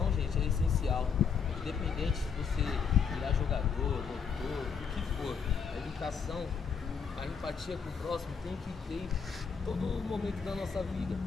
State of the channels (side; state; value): right; quieter; 6.2 dB